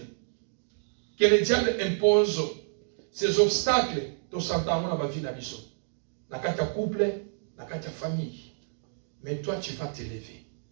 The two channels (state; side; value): silent; left; digital silence